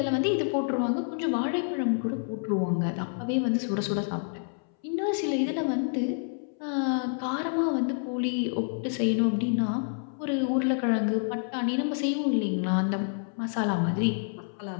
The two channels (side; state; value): right; silent; 59 dB below the other